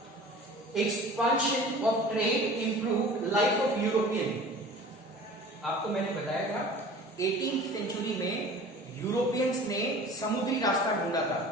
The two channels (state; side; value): normal; both; correlation 0.42